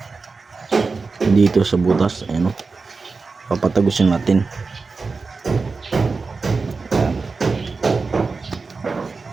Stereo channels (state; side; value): quieter; left; 4.3 dB